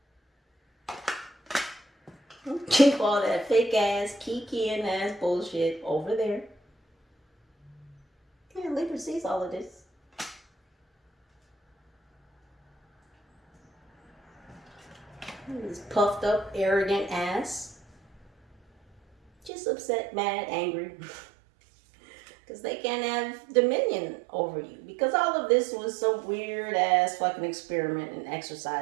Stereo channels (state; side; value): drops out; left; at 19.5 s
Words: Keep all that fake ass, kikiing ass bullshit over there. Yeah, Libra sees all of this. This puffed up, arrogant ass. Just upset, mad, angry. Because they can't have dominion over you. Because all of this was some weird ass fucking experiment in